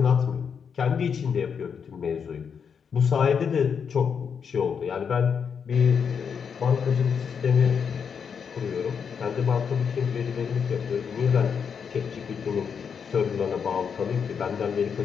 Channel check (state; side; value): quieter; right; 6.7 dB